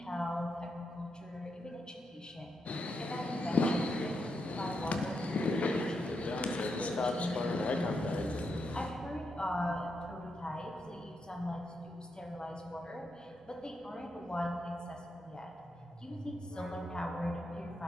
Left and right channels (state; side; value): normal; both; correlation 0.83